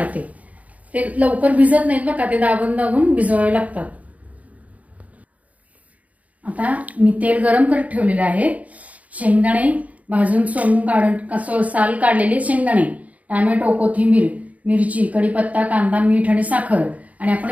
ते लवकर भिजत नाहीत बघा, ते दाबून दाबून भिजवावे लागतात। आता मी तेल गरम करत ठेवलेले आहे। शेंगदाणे भाजून सोलून काढून साल काढलेले शेंगदाणे, टोमॅटो, कोथिंबीर, मिरची, कढीपत्ता, कांदा, मीठ आणि साखर आणि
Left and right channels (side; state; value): left; late; 0.070 ms